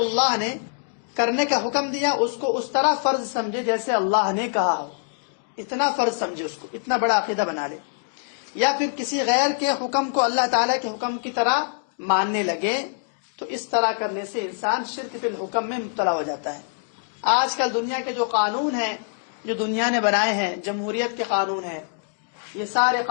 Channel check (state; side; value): silent; right; digital silence